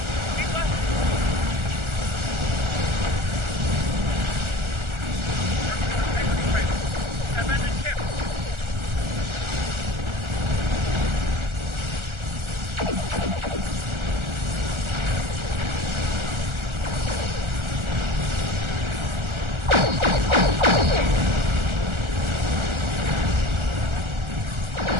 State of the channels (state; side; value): late; left; 1.4 ms